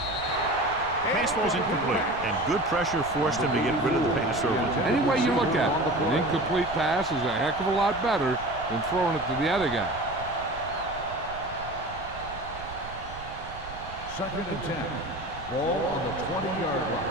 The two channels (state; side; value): noise; right; rumble, 14 dB below the sound